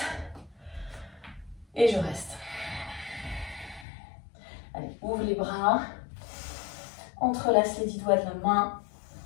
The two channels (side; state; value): right; drops out; at 3.9 s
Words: Et je reste. Allez, ouvre les bras. Entrelace les 10 doigts de la main.